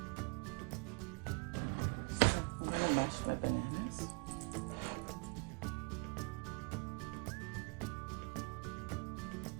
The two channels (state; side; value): quieter; left; 31.8 dB